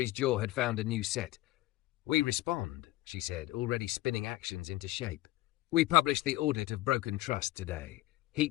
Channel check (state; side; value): quieter; right; 17.3 dB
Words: jaw had found a new set. We respond, she said, already spinning actions into shape. We publish the audit of broken trust today.